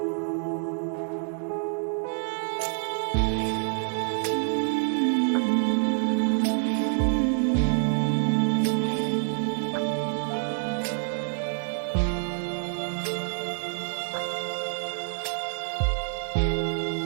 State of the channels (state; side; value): silent; left; 60 dB below the other